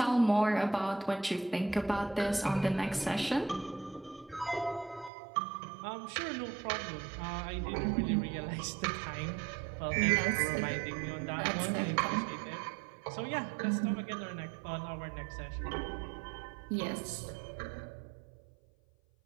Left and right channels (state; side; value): drops out; left; at 5.1 s